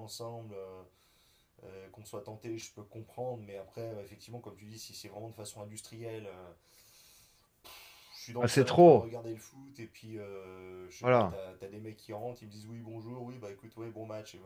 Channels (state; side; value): identical; both; correlation 1.00